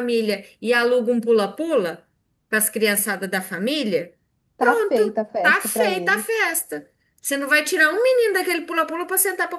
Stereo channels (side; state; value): both; identical; correlation 1.00